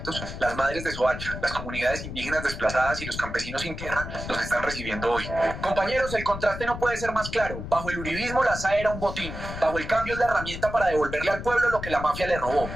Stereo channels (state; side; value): noise; left; rumble, 8 dB below the sound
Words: las madres de Soacha, las comunidades indígenas desplazadas y los campesinos sin tierra los están recibiendo hoy. Compañeros, el contraste no puede ser más claro. Bajo el uribismo la SAE era un botín. Bajo el cambio es la herramienta para devolverle al pueblo lo que la mafia le robó.